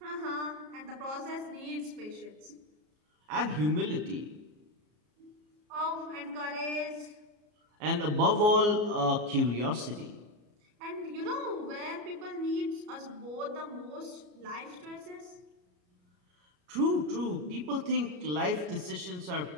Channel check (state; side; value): late; left; 33 ms